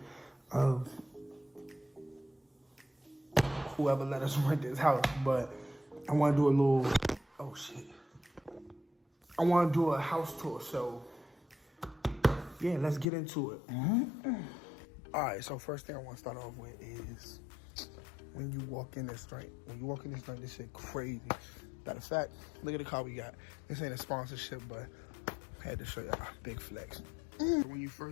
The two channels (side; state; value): right; drops out; at 13.1 s